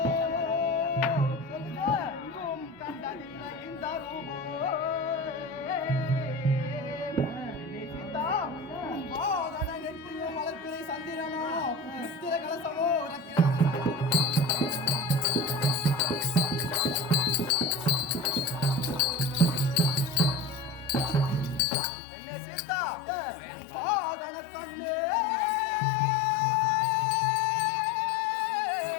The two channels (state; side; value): drops out; right; at 21.7 s